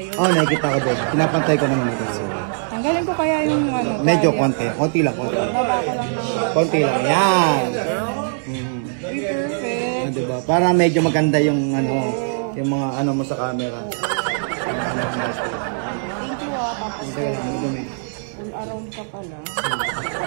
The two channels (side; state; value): left; silent; digital silence